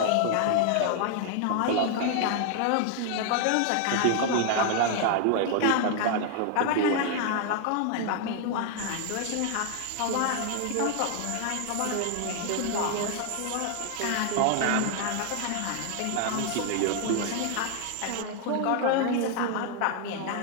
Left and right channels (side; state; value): both; different; correlation 0.00